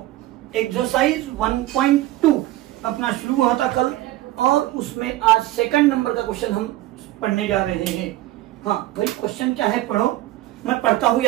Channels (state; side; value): quieter; left; 15.8 dB